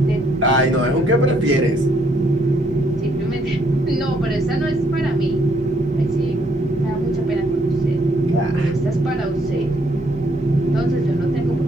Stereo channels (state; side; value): normal; both; correlation 0.69